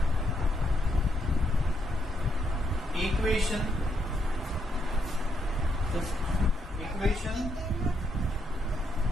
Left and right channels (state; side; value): normal; both; correlation 0.77